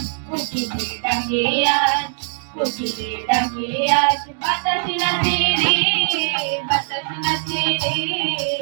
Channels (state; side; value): silent; left; 65 dB below the other